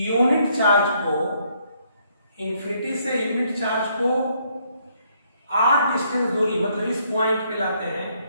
चार्ज को r डिस्टेंस दूरी मतलब इस पॉइंट पे लाते हैं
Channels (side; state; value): both; inverted; correlation -0.70